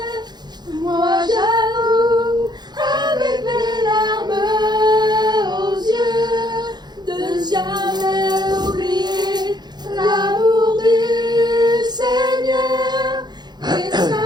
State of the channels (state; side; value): late; left; 0.20 ms